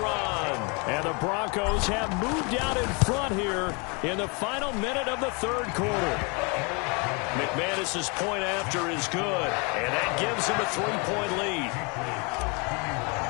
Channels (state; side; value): quieter; right; 31.7 dB